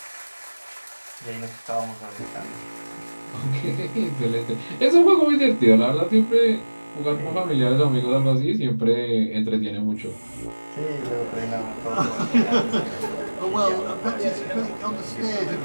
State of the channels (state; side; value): inverted; both; correlation -1.00